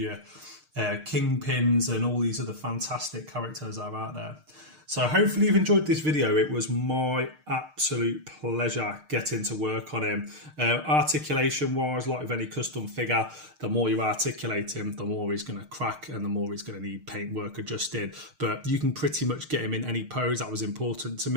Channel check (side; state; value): left; late; 6.5 ms